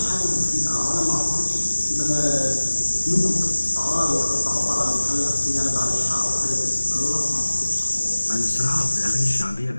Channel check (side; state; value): both; inverted; correlation -1.00